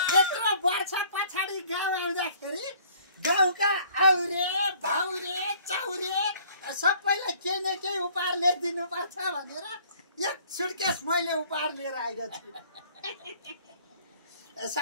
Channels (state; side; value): inverted; both; correlation -0.57